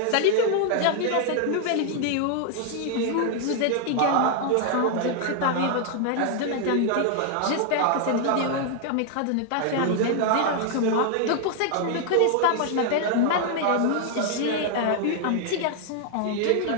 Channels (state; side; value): different; both; correlation 0.00